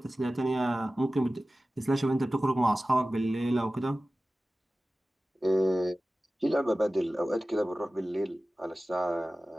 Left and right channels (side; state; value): both; normal; correlation 0.96